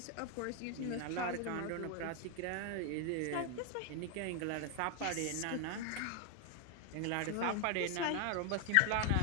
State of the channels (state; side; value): different; both; correlation 0.01